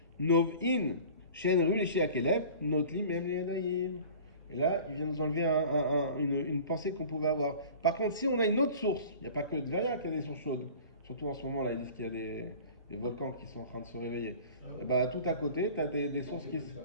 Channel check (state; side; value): inverted; both; correlation -0.43